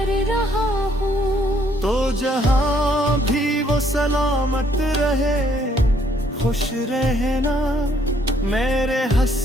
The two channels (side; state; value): both; normal; correlation 0.67